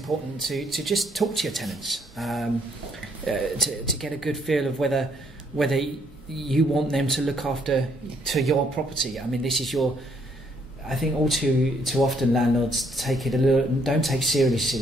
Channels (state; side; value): normal; both; correlation 0.69